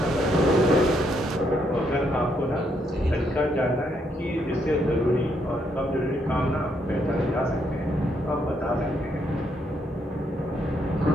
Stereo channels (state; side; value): normal; both; correlation 0.75